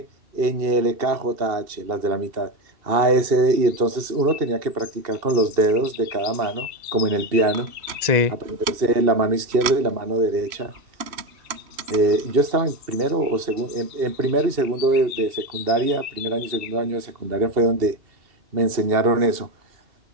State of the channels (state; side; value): late; left; 2.7 ms